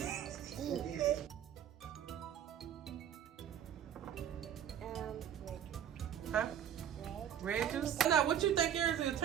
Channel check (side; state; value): left; quieter; 9.7 dB